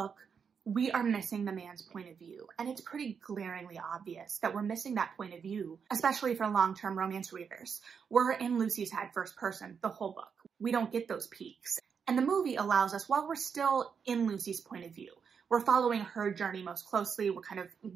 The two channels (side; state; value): left; quieter; 6.5 dB